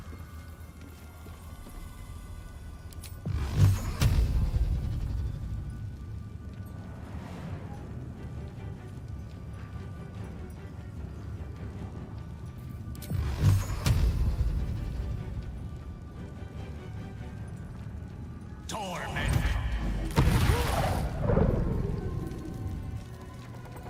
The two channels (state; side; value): identical; both; correlation 1.00